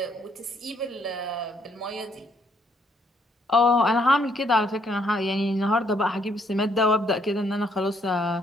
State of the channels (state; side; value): normal; both; correlation 0.69